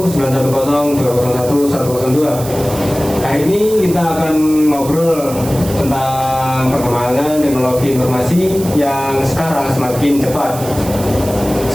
Hari ini kita akan ngobrol tentang perkembangan teknologi informasi yang sekarang semakin cepat.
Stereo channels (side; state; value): right; noise; hiss, 13 dB below the sound